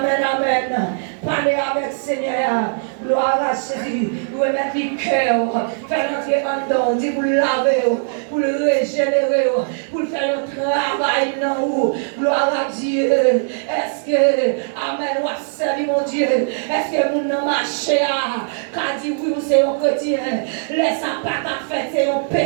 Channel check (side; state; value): left; silent; digital silence